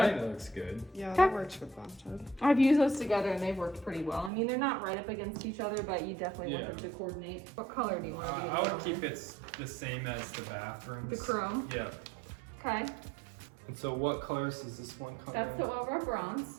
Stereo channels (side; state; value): left; drops out; at 4.3 s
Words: I think that looks good. Yeah, Okay. that works for bathtub. I've used those together and they've worked pretty well. I mean, they're not right up against each other, but you definitely want Yeah. them to coordinate. What color do you want to do? I would keep it the same as the bathrooms. The chrome. Yeah. Okay, And so what colors does this one come that's in? the oil rub